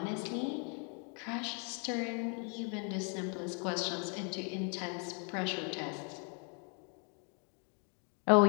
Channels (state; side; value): quieter; right; 38.9 dB